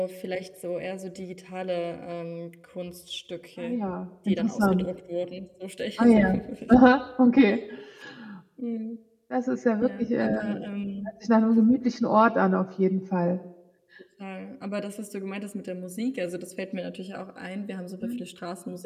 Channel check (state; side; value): identical; both; correlation 1.00